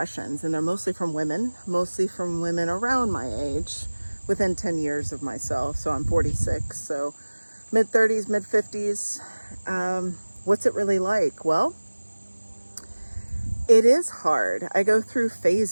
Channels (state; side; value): inverted; both; correlation -1.00